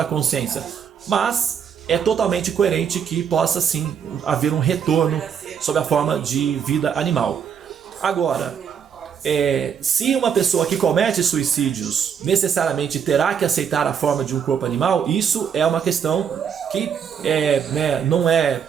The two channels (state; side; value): quieter; left; 7.5 dB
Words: consciência, mas é totalmente coerente que possa sim haver um retorno sob a forma de vida animal. Agora, se uma pessoa que comete suicídios necessariamente terá que aceitar a forma de um corpo animal, isso é uma questão que não é